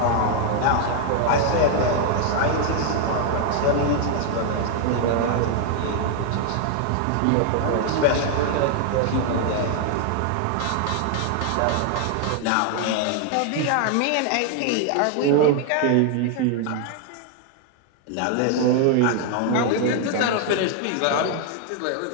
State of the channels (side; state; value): both; different; correlation 0.00